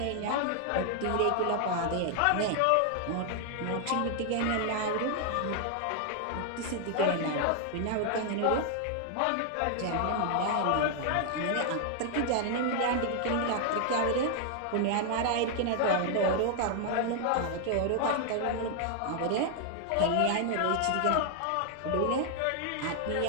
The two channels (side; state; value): both; different; correlation 0.00